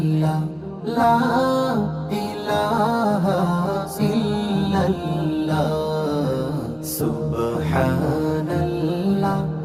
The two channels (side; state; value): both; identical; correlation 1.00